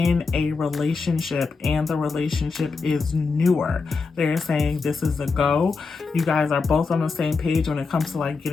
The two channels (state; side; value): quieter; right; 4.5 dB